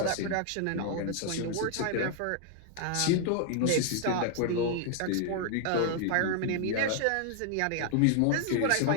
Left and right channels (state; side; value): different; both; correlation 0.00